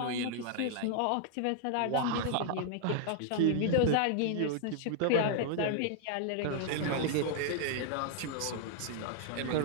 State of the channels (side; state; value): both; different; correlation 0.00